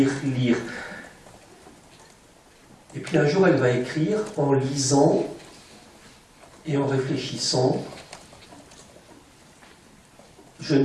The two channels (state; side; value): identical; both; correlation 1.00